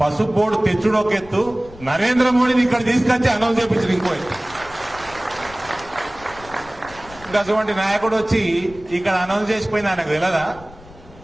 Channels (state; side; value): noise; left; rumble, 20 dB below the sound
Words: పసుపు బోర్డు తెచ్చుడు ఒక ఎత్తు, నరేంద్ర మోడీని ఇక్కడ తీసుకొచ్చి అనౌన్స్ చేయించారు ఇంకో ఎత్తు. ఇంకా అటువంటి నాయకుడు వచ్చి ఇక్కడ అనౌన్స్ చేసిపోయింది, ఆయనకు తెలియదా